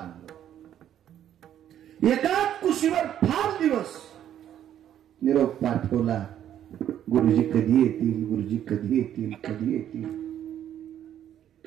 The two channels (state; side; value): quieter; left; 10.6 dB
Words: एकाच कुशीवर 5 दिवस निरोप पाठवला. गुरुजी कधी येतील, गुरुजी कधी येतील, कधी येतील.